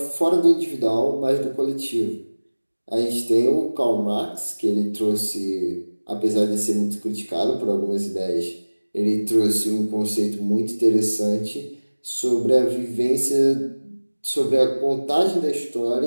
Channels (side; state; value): both; inverted; correlation -1.00